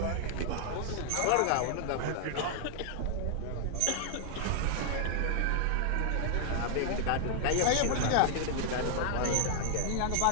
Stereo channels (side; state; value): both; different; correlation -0.01